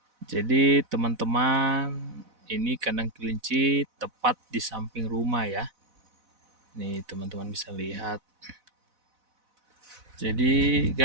Jadi teman-teman, ini kandang kelinci tepat di samping rumah ya. Nih teman-teman bisa lihat. Jadi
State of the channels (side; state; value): left; late; 4.0 ms